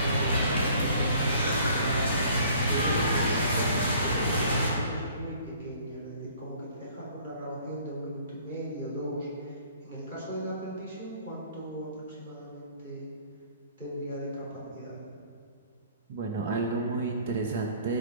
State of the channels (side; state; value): both; inverted; correlation -0.54